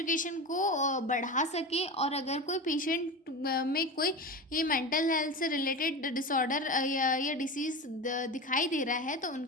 को बढ़ा सके। और अगर कोई पेशेंट में कोई ये मेंटल हेल्थ से रिलेटेड डिसऑर्डर या डिसीज़ दिखाई दे रहा है तो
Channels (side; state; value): both; normal; correlation 0.25